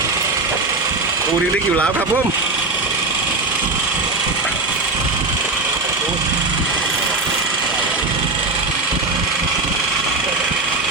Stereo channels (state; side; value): quieter; left; 3.3 dB